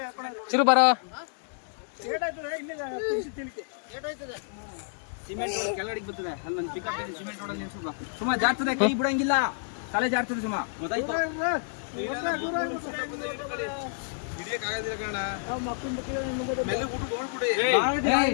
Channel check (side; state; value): right; silent; digital silence